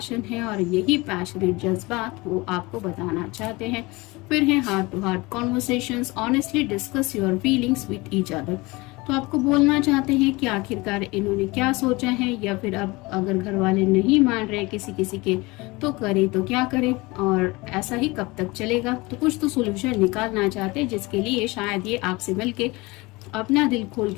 है और यही पैशनेट जज्बात वो आपको बताना चाहते हैं। फिर है heart to heart conversations, honestly discuss your feelings with each other. तो आपको बोलना चाहते हैं कि आखिरकार इन्होंने क्या सोचा है, या फिर अब अगर घर वाले नहीं मान रहे किसी किसी के तो करे तो क्या करे और ऐसा ही कब तक चलेगा। तो कुछ तो सोल्यूशन निकालना चाहते हैं जिसके लिए शायद ये आपसे मिलके अपना दिल खोल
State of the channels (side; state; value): right; quieter; 23.3 dB